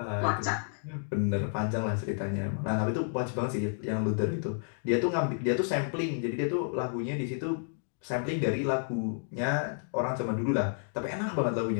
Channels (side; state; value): right; silent; digital silence